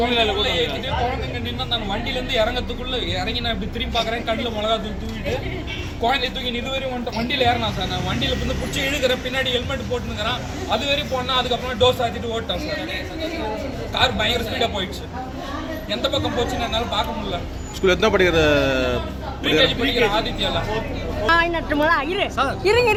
ஏற்றிட்டு குழந்தைங்க நின்று அந்த வண்டியிலேருந்து இறங்கி நான் இப்படி திரும்பி பார்க்குறேன். கண்ணில் மிளகா தூக்கிட்டு குழந்தைய தூக்கி இதுவரையும் வந்துட்டு வண்டியில் ஏறினான் சார். நான் வண்டியில் வந்து பிடிச்சி இழுக்கிறேன், பின்னாடி ஹெல்மெட் போட்டுனுங்கிறான். அது வரையும் போனால் அதுக்கப்புறம் டோர் சாத்திட்டு ஓட்டான் சார். கார் பயங்கர ஸ்பீடாக போயிடுச்சு. எந்த பக்கம் போச்சுன்னு என்னால் பார்க்க முடியல. ஸ்கூல் எத்தனை படிக்கிற படிக்கிற ஆதித்யால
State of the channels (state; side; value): identical; both; correlation 1.00